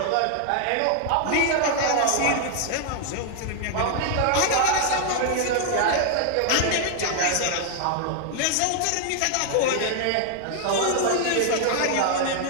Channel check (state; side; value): different; both; correlation 0.00